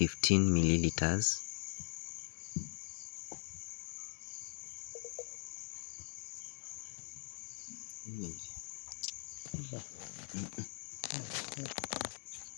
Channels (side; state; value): right; silent; digital silence